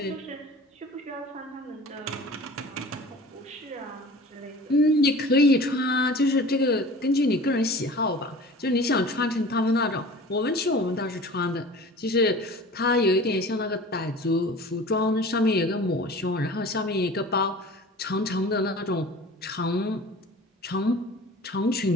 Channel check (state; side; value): normal; both; correlation 0.41